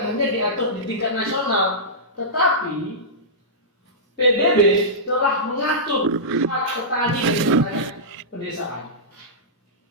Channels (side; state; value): both; normal; correlation -0.16